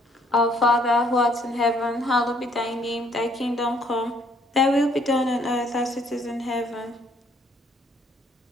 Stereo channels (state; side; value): normal; both; correlation 0.65